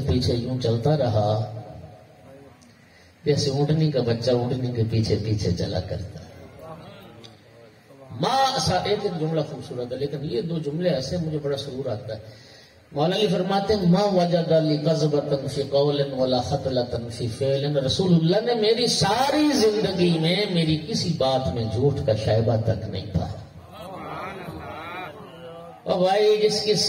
پیچھے یوں چلتا رہا جیسے اونٹنی کا بچہ اونٹنی کے پیچھے پیچھے چلا کرتا ہے. ایک جملہ خوبصورت ہے لیکن یہ دو جملے ایسے مجھے بڑا سرور آتا ہے. مولا علی فرماتے ہیں ما وجد لی کذبۃ فی قول ولا خطلۃ فی فعل. رسول اللہ نے میری ساری زندگی میں میری کسی بات میں جھوٹ کا شائبہ تک نہیں پایا. اور بھائی جس کی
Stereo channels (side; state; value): both; identical; correlation 1.00